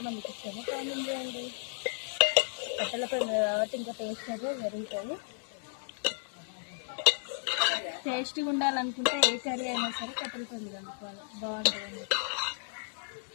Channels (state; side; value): silent; right; 56 dB below the other